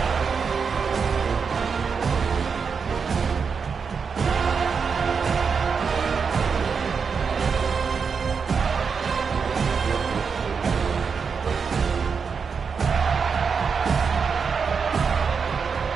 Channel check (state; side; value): quieter; left; 5.8 dB